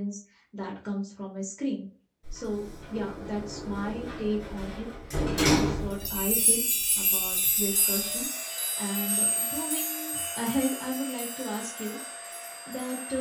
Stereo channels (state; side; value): identical; both; correlation 1.00